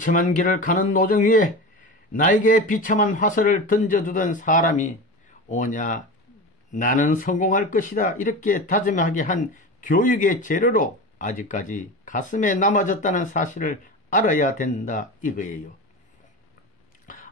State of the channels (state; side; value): normal; both; correlation 0.27